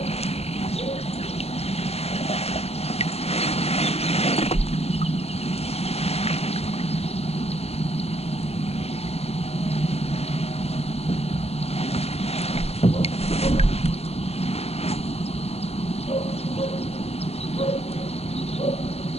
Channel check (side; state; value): right; late; 0.30 ms